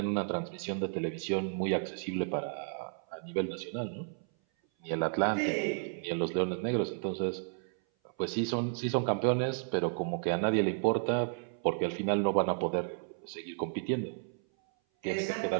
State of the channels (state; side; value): silent; left; 56 dB below the other